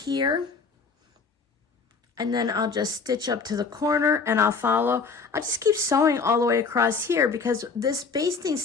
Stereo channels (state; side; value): quieter; right; 4.9 dB